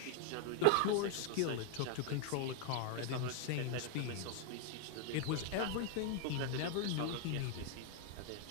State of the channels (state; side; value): different; both; correlation 0.00